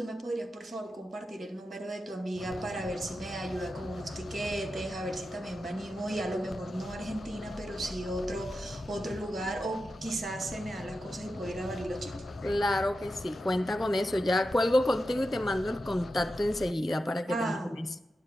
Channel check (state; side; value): normal; both; correlation 0.90